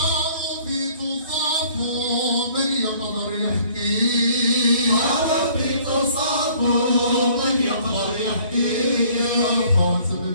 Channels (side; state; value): both; inverted; correlation -0.57